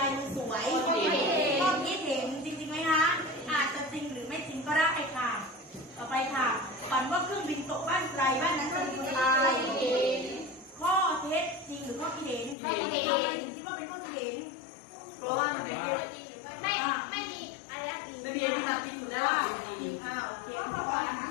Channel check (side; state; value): right; drops out; at 12.6 s